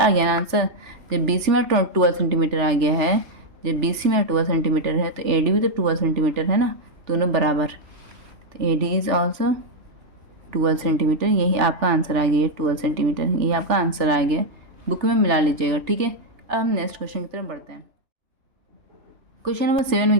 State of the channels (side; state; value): left; late; 3.4 ms